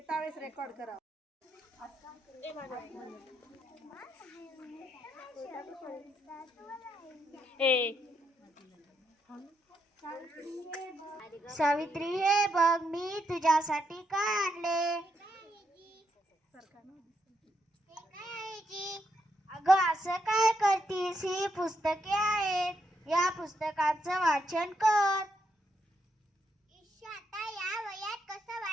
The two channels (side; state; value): both; normal; correlation 0.78